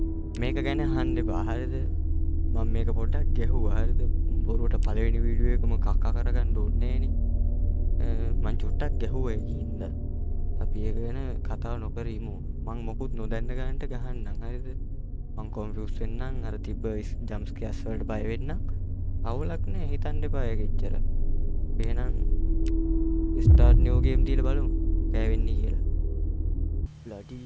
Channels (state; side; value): identical; both; correlation 1.00